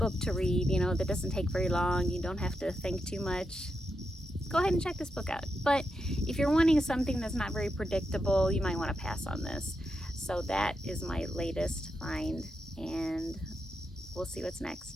to read, you know, that doesn't take very long, you don't have to think too much, go ahead and check this book out. But if you're wanting something that's not very predictable, you might want to pass on this. So that is my latest find, and we'll see what's next.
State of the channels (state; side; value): normal; both; correlation 0.86